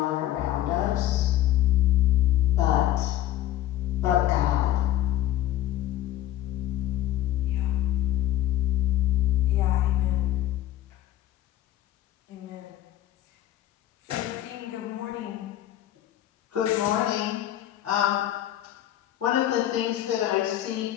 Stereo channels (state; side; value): quieter; right; 13.3 dB